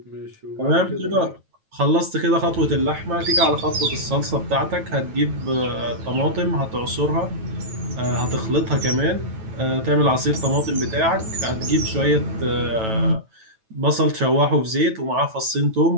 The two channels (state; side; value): late; left; 9.1 ms